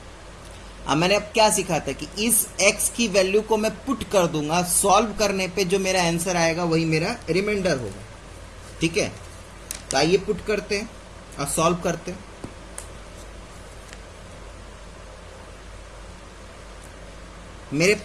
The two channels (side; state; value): both; identical; correlation 1.00